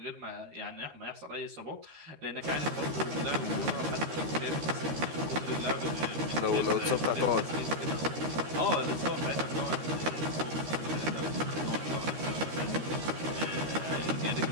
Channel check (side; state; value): left; late; 13 ms